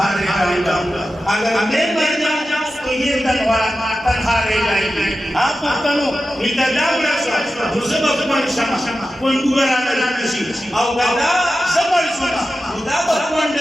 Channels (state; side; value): normal; both; correlation 0.92